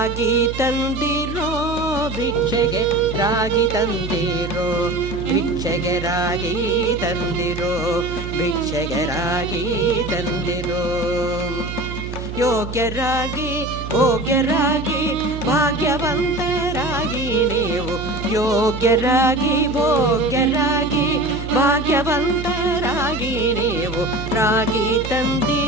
ತಂದಿರೋ ಭಿಕ್ಷೆಗೆ ರಾಗಿ ತಂದಿರೋ ಭಿಕ್ಷೆಗೆ ರಾಗಿ ತಂದಿರೋ ಭಿಕ್ಷೆಗೆ ರಾಗಿ ತಂದಿರೋ. ಯೋಗ್ಯರಾಗಿ ಭೋಗ್ಯರಾಗಿ ಭಾಗ್ಯವಂತರಾಗಿ ನೀವು ಯೋಗ್ಯರಾಗಿ ಭೋಗ್ಯರಾಗಿ ಭಾಗ್ಯವಂತರಾಗಿ ನೀವು ರಾಗಿ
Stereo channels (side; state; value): right; noise; hum, 8 dB below the sound